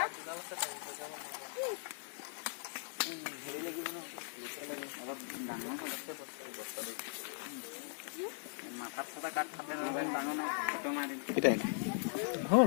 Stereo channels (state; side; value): silent; right; digital silence